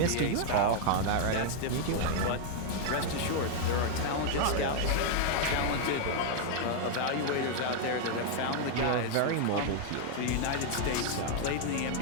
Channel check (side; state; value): both; different; correlation 0.00